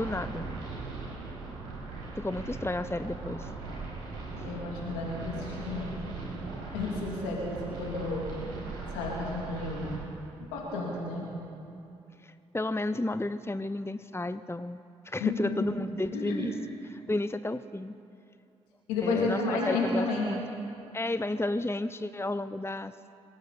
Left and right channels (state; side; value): normal; both; correlation 0.70